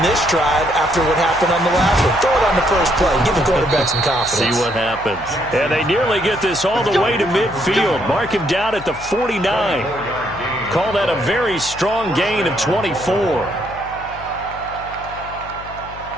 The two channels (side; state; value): left; noise; hum, 17 dB below the sound